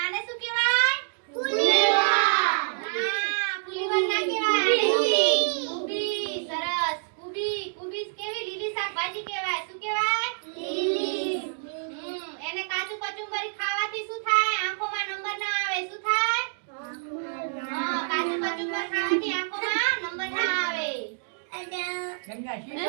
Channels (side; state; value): left; silent; digital silence